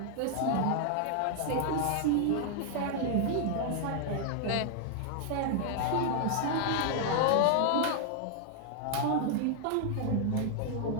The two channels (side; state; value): both; different; correlation 0.00